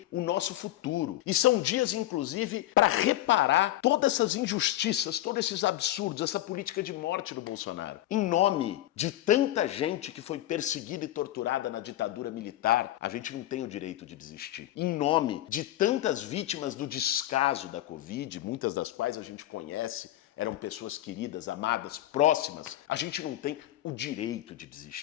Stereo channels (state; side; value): quieter; right; 14.3 dB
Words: o nosso futuro. E são dias, inclusive, para reparar todas essas injustiças, todos esses absurdos, essa política de morte do Bolsonaro. Em nome de tanta gente que foi perseguida e torturada na ditadura militar, a gente não tem o direito de desistir. Em nome de tantas vítimas do descaso da Covid, muitas das quais a gente conhece, eram pessoas queridas, amadas, próximas, a gente não tem o direito de